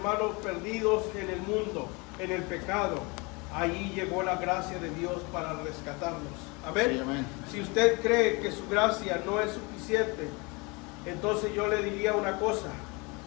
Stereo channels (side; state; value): right; quieter; 28.0 dB